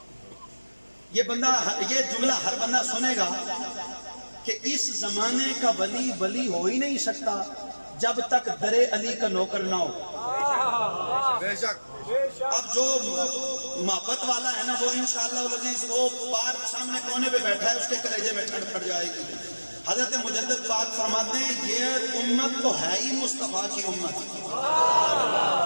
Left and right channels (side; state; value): both; inverted; correlation -1.00